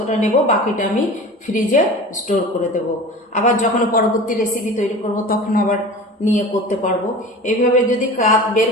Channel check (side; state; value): both; normal; correlation 0.36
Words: নেব, বাকিটা আমি ফ্রিজে স্টোর করে দেব। আবার যখন পরবর্তী রেসিপি তৈরি করব তখন আবার নিয়ে করতে পারবো। এইভাবে যদি কাপ বের